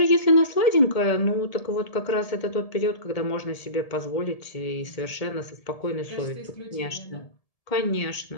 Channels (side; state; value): right; late; 1.7 ms